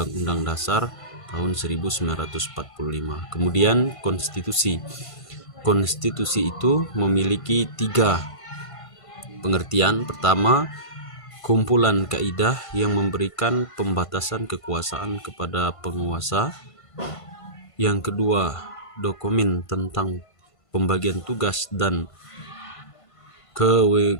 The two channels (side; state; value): right; late; 1.5 ms